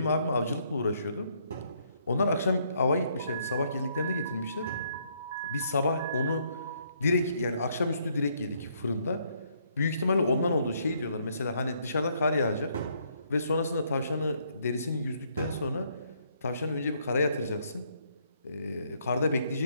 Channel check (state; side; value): inverted; both; correlation -0.70